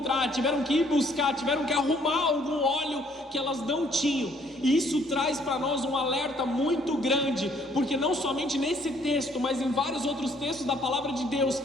tiveram que ir buscar, tiveram que arrumar algum óleo que elas não tinham. E isso traz para nós um alerta muito grande, porque não somente nesse texto, mas em vários outros textos da palavra de Deus,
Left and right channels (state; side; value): normal; both; correlation 0.64